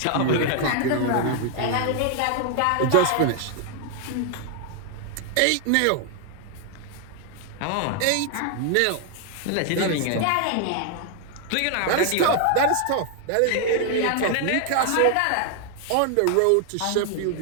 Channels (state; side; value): different; both; correlation 0.00